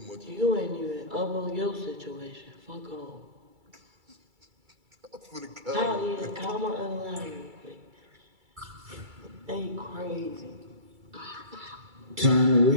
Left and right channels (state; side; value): late; left; 2.3 ms